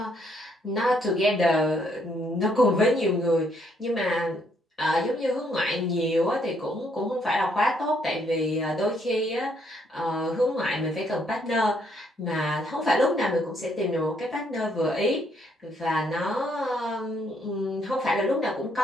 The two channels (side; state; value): both; normal; correlation 0.71